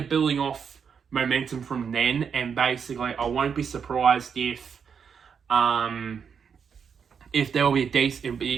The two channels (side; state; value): left; quieter; 6.8 dB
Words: building off momentum from then, and basically I won't be surprised if there will